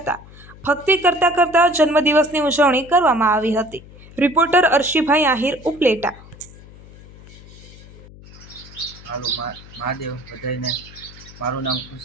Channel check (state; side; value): noise; left; hum, 20 dB below the sound